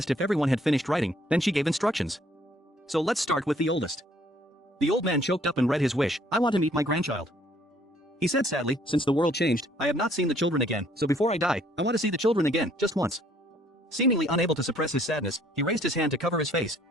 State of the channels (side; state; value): both; normal; correlation 0.63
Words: if everyone had finished writing, then she gave instructions. So let's start with the oldest. The old man choked up and read his wish, I want to meet my grandchild. He said sadly, since the world changed, I have not seen the children again, so before I die, I want to see the children again, just once. Seemingly unable to suppress his sadness, he raised his hand to cover his face,